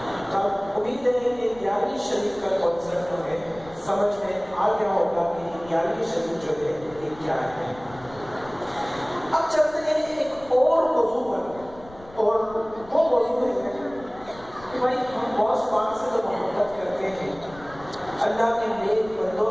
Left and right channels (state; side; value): noise; left; rumble, 21 dB below the sound